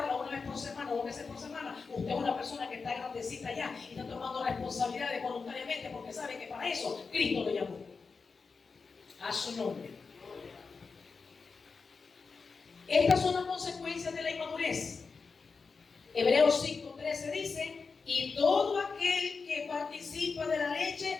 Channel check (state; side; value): quieter; right; 4.8 dB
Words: una vez por semana o 2 veces por semana. Usted es una persona que está grandecita ya y está tomando responsabilidades voluntariamente porque sabe que para eso Cristo lo llamó. A su nombre. Estas son las consecuencias de la inmadurez. Hebreos 5:13 dice: y todo aquel que participa de la